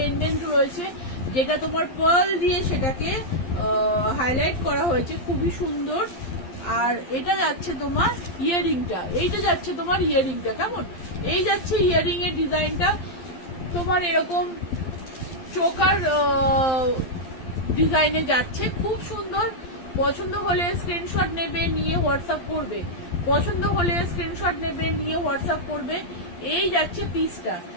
রয়েছে, যেটা তোমার পার্ল দিয়ে সেটাকে হাইলাইট করা হয়েছে, খুবই সুন্দর। আর এটা যাচ্ছে তোমার ইয়ারিংটা, এইটা যাচ্ছে তোমার ইয়ারিংটা। কেমন? এই যাচ্ছে ইয়ারিং এর ডিজাইনটা তোমার এরকম চোকার ডিজাইনে যাচ্ছে, খুব সুন্দর। পছন্দ হলে স্ক্রিনশট নেবে, নিয়ে হোয়াটসঅ্যাপ করবে। পছন্দ হলে স্ক্রিনশট নেবে, নিয়ে হোয়াটসঅ্যাপ করবে। এই যাচ্ছে পিসটা,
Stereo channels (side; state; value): right; late; 12 ms